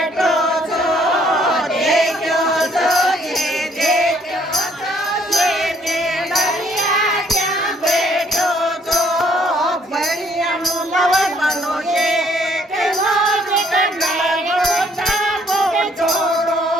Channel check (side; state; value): both; normal; correlation 0.64